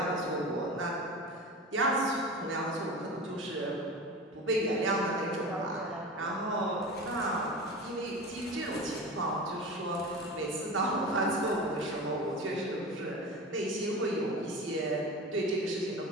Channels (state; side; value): normal; both; correlation 0.31